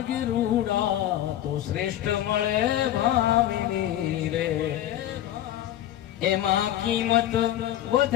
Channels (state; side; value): quieter; right; 12.4 dB